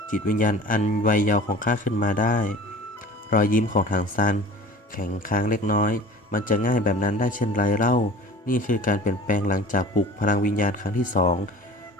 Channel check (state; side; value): normal; both; correlation 0.42